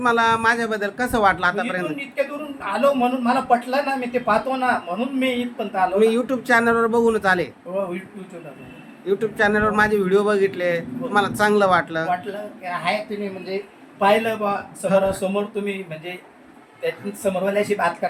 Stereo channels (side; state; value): both; identical; correlation 1.00